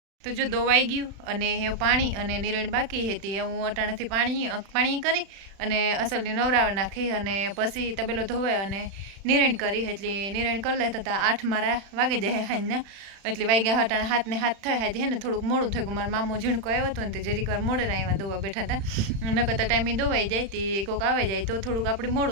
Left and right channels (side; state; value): left; late; 36 ms